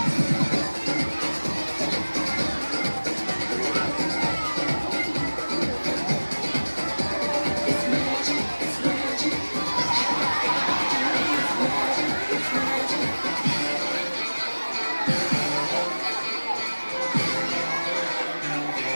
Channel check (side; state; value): both; inverted; correlation -1.00